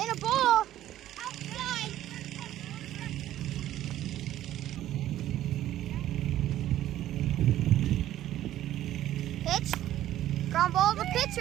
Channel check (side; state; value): left; quieter; 13.1 dB